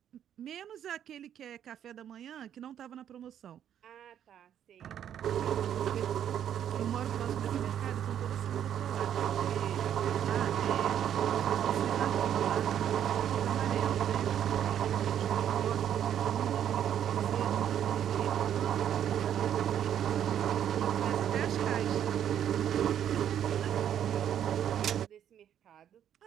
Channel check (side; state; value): left; quieter; 9.8 dB